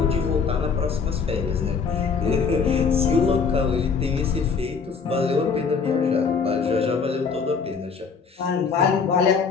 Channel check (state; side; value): quieter; right; 5.6 dB